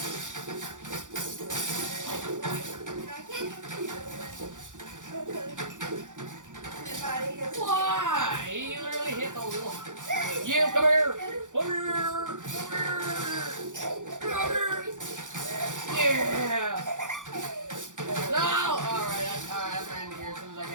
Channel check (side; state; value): left; late; 0.87 ms